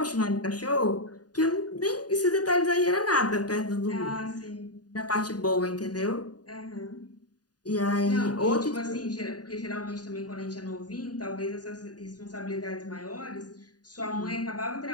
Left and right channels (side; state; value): right; late; 0.69 ms